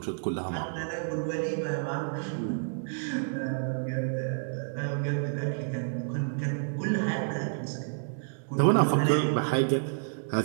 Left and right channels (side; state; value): left; silent; digital silence